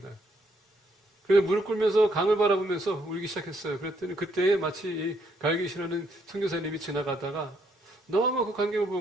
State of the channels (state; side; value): normal; both; correlation 0.72